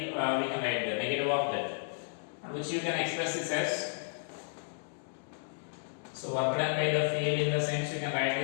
we can write the negative of that. And which you can express this as, so work done by the field in the sense you can write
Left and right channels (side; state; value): right; silent; digital silence